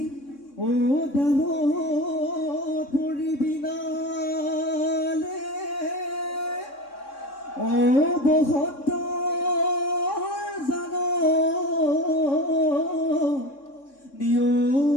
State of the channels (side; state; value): right; late; 3.6 ms